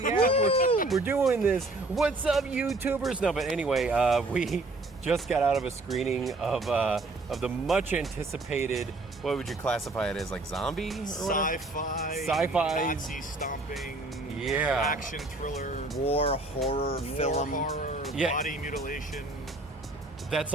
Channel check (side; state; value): left; quieter; 3.0 dB